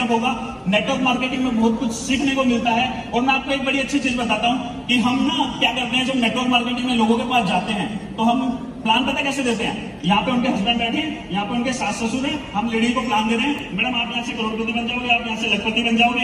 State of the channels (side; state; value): both; identical; correlation 1.00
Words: होगा। नेटवर्क मार्केटिंग में बहुत कुछ सीखने को मिलता है। और मैं आपको एक बड़ी अच्छी चीज बताता हूँ कि हम ना क्या करते हैं, जब नेटवर्क मार्केटिंग में लोगों के पास जाते हैं तो हम प्लान पता कैसे देते हैं? यहाँ पे उनके हस्बैंड बैठे हैं, यहाँ पे उनके सास ससुर हैं, हम लेडी को प्लान दे रहे हैं, मैडम आप यहाँ से करोड़पति बन जाओगे, आप यहाँ से लखपति बन